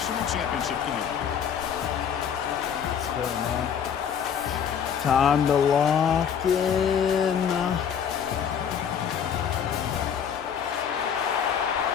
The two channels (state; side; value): quieter; right; 7.9 dB